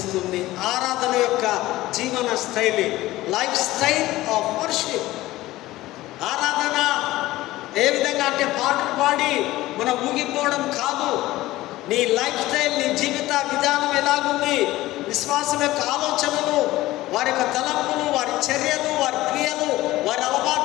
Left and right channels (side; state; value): right; quieter; 17.2 dB